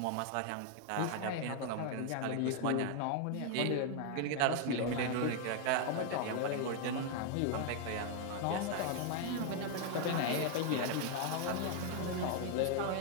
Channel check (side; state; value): both; different; correlation 0.00